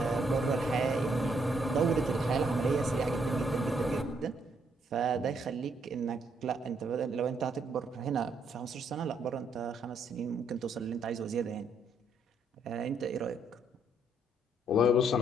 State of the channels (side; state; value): both; normal; correlation 0.72